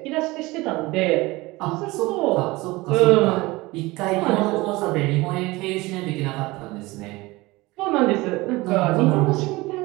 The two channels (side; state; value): left; quieter; 21.4 dB